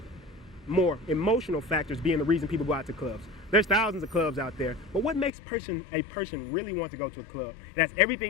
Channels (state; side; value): drops out; right; at 5.3 s